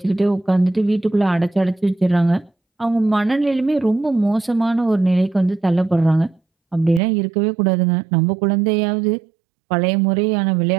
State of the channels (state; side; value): drops out; left; at 7.0 s